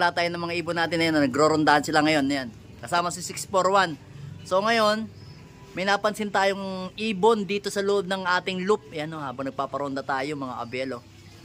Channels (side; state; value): both; identical; correlation 1.00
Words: tayo ng mga ibon natin ngayon. Nagro-rondahan sila ngayon. Ayan. Kasama si 641. So ngayon, may napansin tayong ibon dito sa loob ng ating loop. Ayan, oh, habang nagpaparonda tayo mga Abel. Oh.